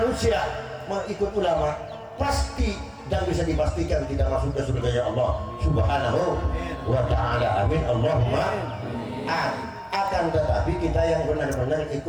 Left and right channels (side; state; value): both; identical; correlation 1.00